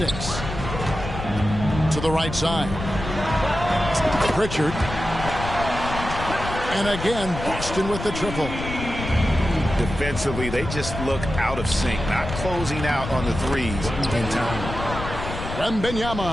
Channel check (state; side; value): noise; left; rumble, 7 dB below the sound